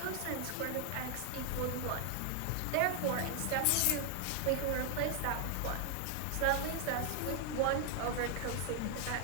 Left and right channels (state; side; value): different; both; correlation 0.00